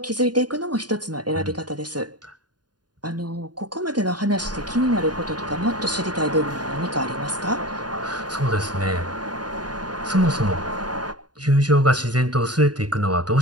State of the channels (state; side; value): late; left; 0.70 ms